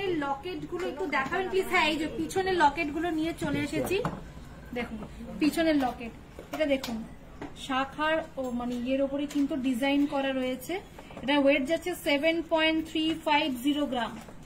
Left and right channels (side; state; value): both; identical; correlation 1.00